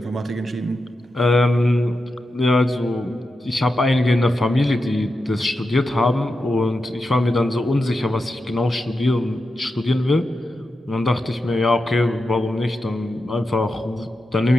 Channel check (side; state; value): both; normal; correlation 0.89